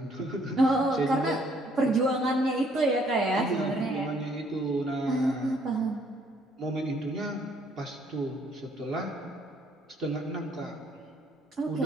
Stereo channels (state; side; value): normal; both; correlation 0.65